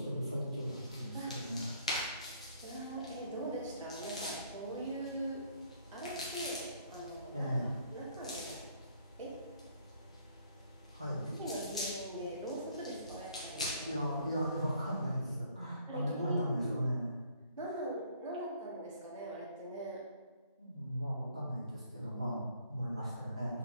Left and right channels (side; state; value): both; inverted; correlation -0.63